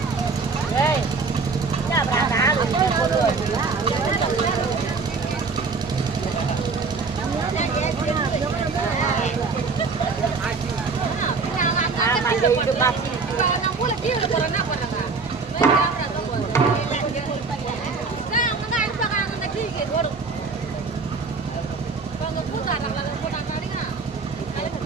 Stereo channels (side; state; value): left; quieter; 4.5 dB